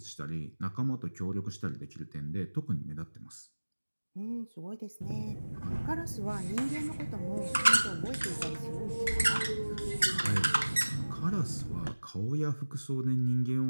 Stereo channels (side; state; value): both; inverted; correlation -1.00